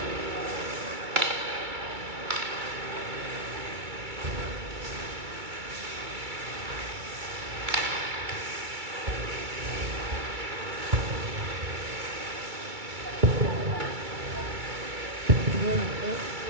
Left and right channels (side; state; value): left; late; 2.3 ms